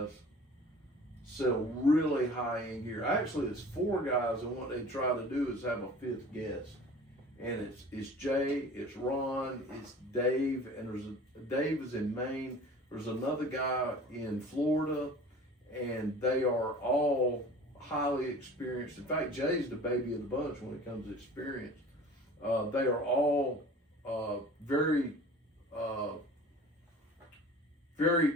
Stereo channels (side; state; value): both; normal; correlation 0.43